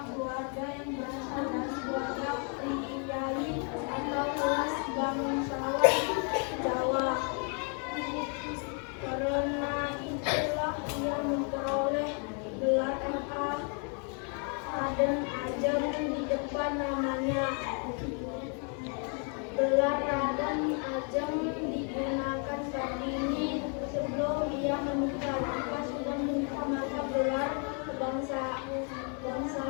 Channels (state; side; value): quieter; right; 39.8 dB